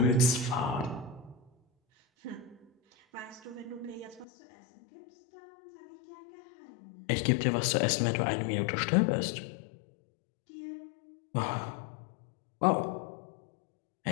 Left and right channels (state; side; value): drops out; right; at 4.2 s